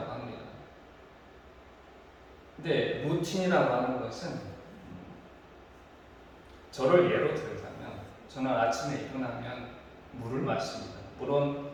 합니다. 근데 루틴이라고 하는 것은, 저를 예로 들자면 저는 아침에 일어나면 물을 마십니다. 물론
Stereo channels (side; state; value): both; identical; correlation 1.00